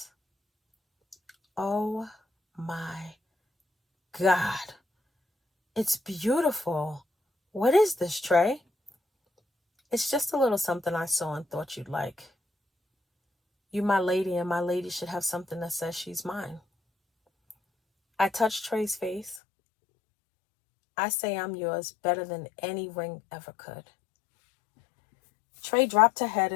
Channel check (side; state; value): right; drops out; at 19.4 s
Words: Oh my God. It's beautiful. What is this, Trey? "It's just a little something I saw and thought you'd like. You my lady, and my lady should have something that says she's mine." I touched Trey's face. "I say I'm yours better than any ring ever could." Trey dropped her head